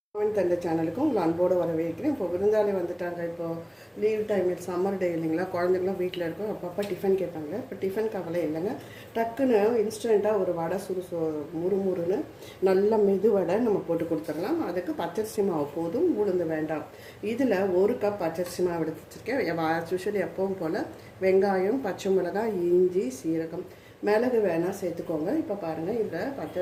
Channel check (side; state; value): both; identical; correlation 1.00